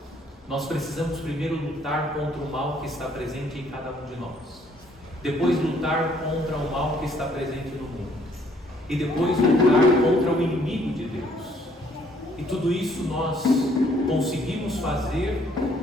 Nós precisamos primeiro lutar contra o mal que está presente em cada um de nós, depois lutar contra o mal que está presente no mundo, e depois lutar contra o inimigo de Deus. E tudo isso nós conseguimos fazer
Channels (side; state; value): both; normal; correlation 0.64